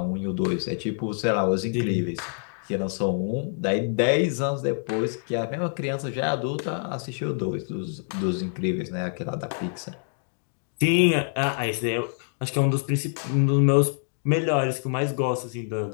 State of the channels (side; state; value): right; silent; digital silence